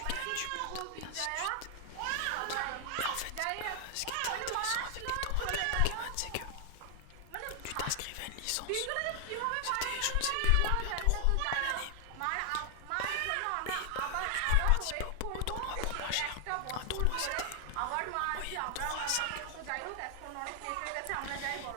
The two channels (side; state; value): both; different; correlation 0.00